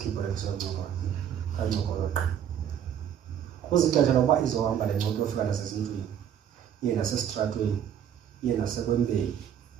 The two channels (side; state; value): left; quieter; 9.4 dB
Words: le nto yokuncokola. Kancokola qha. Kuzixesha lokuba izohamba le moto yofika nasezindlwini. Iye nasesitratweni, iye nasekwembeni,